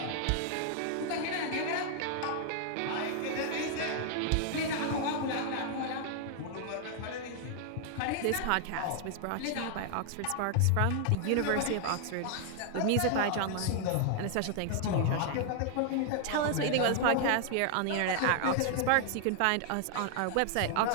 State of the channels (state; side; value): different; both; correlation 0.00